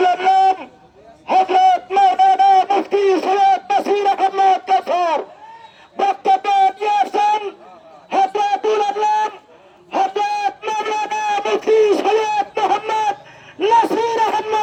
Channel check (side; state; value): both; identical; correlation 1.00